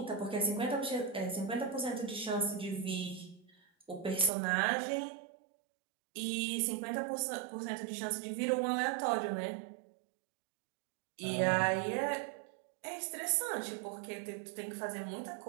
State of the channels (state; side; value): drops out; left; at 4.3 s